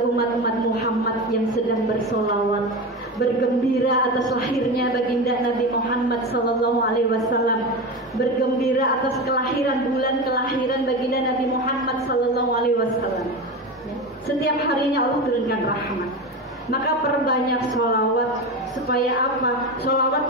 umat-umat Muhammad yang sedang bersolawat, bergembira atas lahirnya baginda Nabi Muhammad SAW, bergembira atas kelahiran, bulan kelahiran baginda Nabi Muhammad SAW. Setiap harinya Allah turunkan rahmat. Maka perbanyak sholawat. Supaya apa? Sholawat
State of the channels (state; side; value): normal; both; correlation 0.22